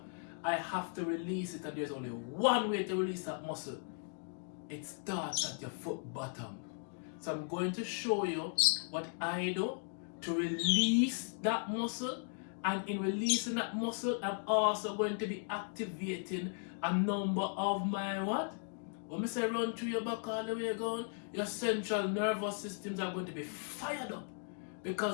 I have to release it, and there's only one way to release that muscle. It starts at your foot bottom. So I'm going to show you what I do to release that muscle, and in releasing that muscle, I'm also going to be activating a number of my what? When I say run through your back all the way going, your central nervous systems are going to be fired up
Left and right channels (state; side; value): silent; right; 53 dB below the other